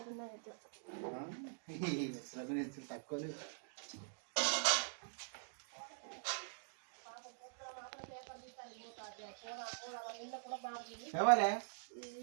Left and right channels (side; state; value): left; silent; digital silence